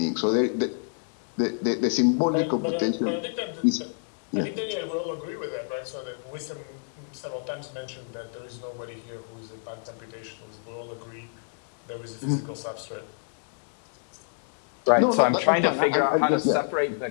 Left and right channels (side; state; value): right; silent; digital silence